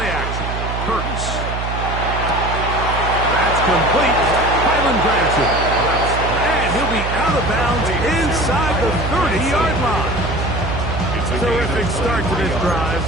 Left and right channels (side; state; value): right; noise; hum, 4 dB below the sound